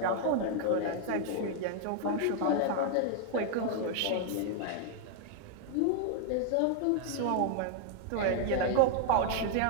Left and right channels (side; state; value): both; different; correlation 0.00